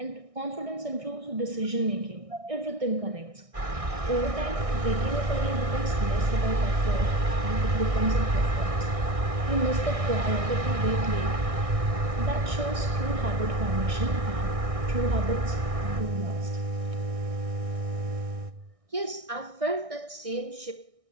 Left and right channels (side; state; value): left; late; 1.6 ms